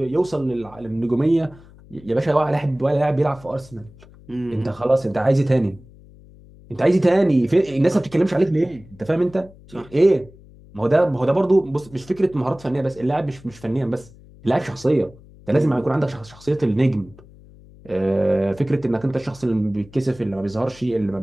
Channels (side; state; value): left; noise; hum, 23 dB below the sound